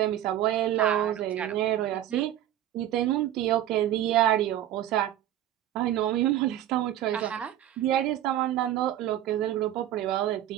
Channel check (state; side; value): quieter; left; 12.3 dB